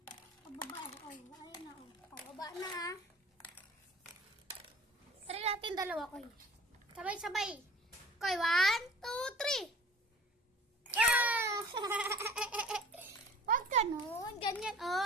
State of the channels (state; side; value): normal; both; correlation 0.45